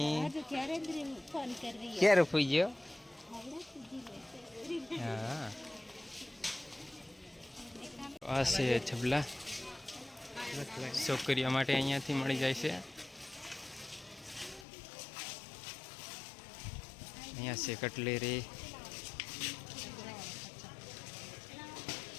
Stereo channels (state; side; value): drops out; right; at 14.7 s